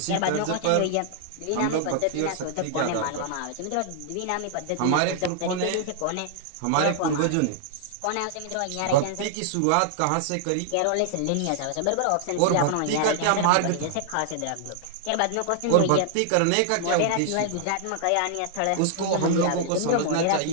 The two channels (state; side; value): different; both; correlation -0.01